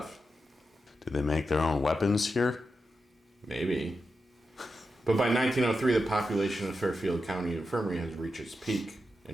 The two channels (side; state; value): both; normal; correlation 0.88